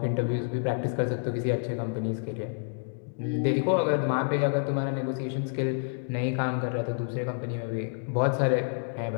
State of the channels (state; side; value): silent; right; digital silence